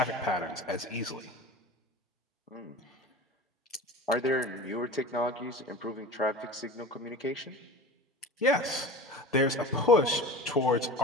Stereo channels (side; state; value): both; normal; correlation 0.35